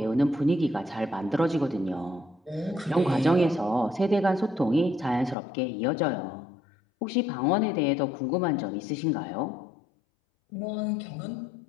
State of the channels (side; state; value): right; drops out; at 5.4 s